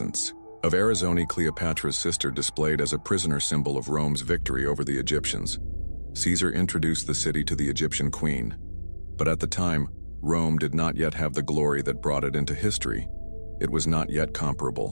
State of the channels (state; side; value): inverted; both; correlation -1.00